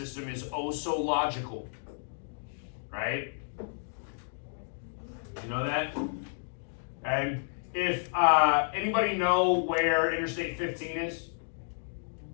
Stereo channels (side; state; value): right; silent; digital silence